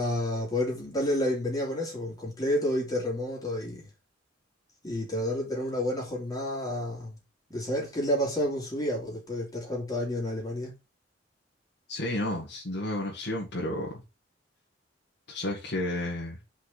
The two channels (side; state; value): both; normal; correlation 0.45